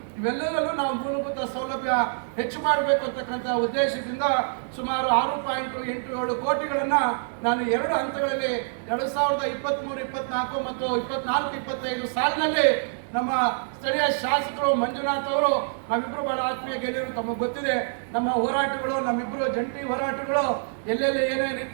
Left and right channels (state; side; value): silent; left; digital silence